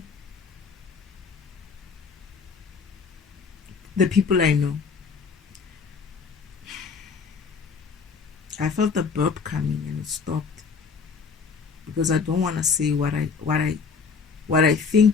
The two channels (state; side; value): quieter; right; 5.4 dB